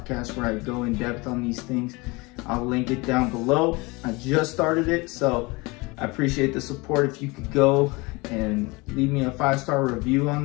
where I go in depth on these things. I'll link it down below. I just started it, so I appreciate the support. If you could go and leave me a 5-star review on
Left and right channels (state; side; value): quieter; right; 25.2 dB